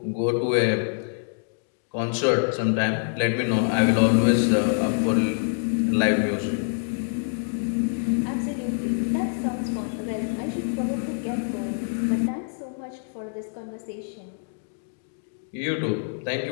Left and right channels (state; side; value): silent; right; digital silence